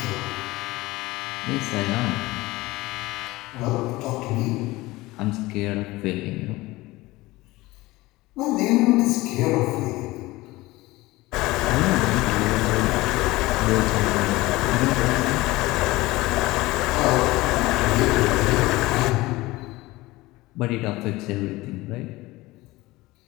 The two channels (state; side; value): quieter; right; 19.8 dB